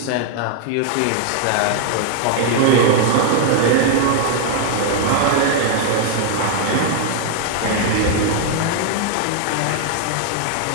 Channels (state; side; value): different; both; correlation 0.00